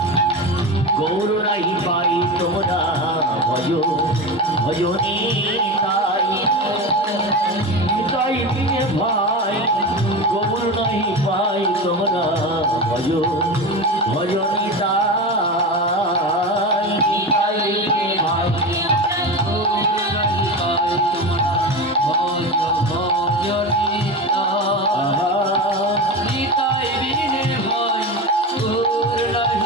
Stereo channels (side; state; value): both; normal; correlation 0.24